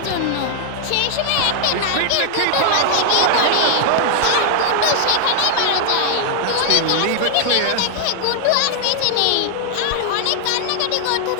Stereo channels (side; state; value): both; different; correlation 0.00